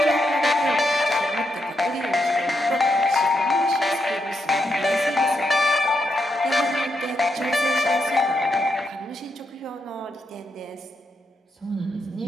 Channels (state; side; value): normal; both; correlation 0.82